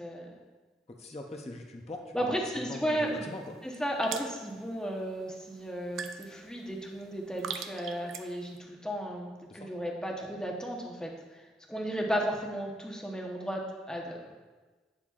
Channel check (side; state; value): both; normal; correlation 0.75